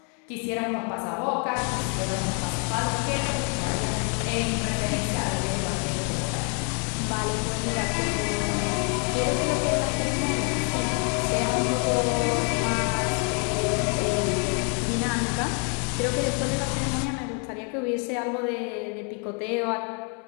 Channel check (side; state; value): right; quieter; 39.1 dB